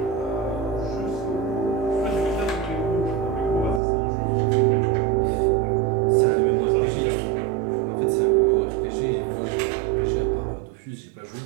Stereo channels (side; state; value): left; drops out; at 3.8 s